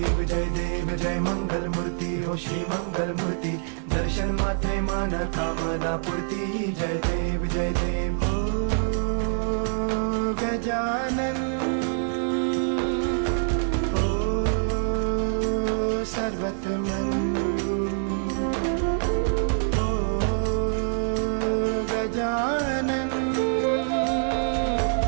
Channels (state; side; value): silent; left; digital silence